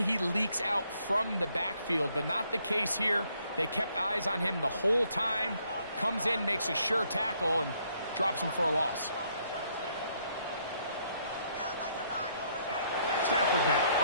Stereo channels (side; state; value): both; inverted; correlation -0.70